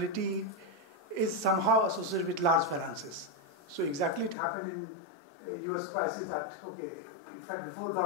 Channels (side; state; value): right; drops out; at 4.4 s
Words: is somehow associated with large finances. So exactly it happened in US crisis that, okay, in fact before